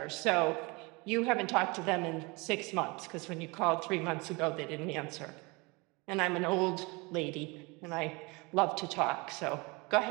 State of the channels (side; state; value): left; quieter; 26.7 dB